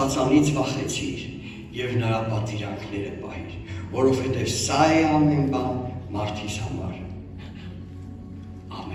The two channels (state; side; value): identical; both; correlation 1.00